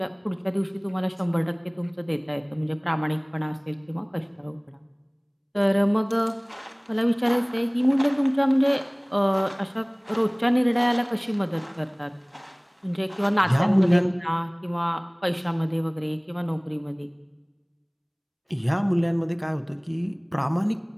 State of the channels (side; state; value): both; identical; correlation 1.00